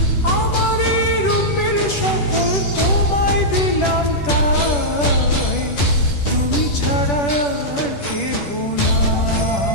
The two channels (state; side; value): late; right; 10 ms